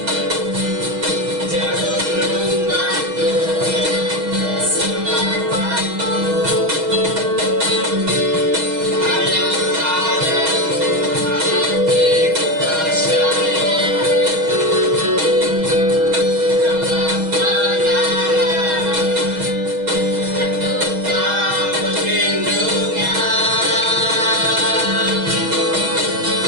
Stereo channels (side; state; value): left; late; 6.3 ms